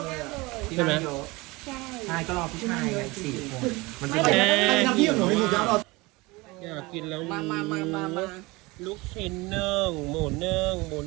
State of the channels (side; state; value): left; quieter; 23.3 dB